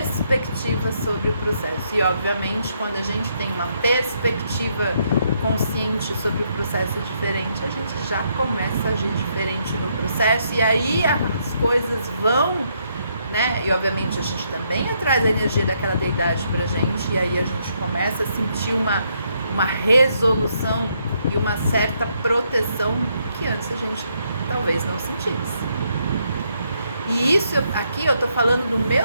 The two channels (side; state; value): both; inverted; correlation -0.75